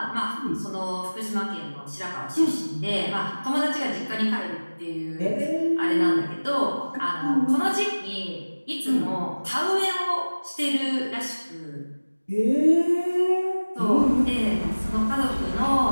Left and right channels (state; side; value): inverted; both; correlation -1.00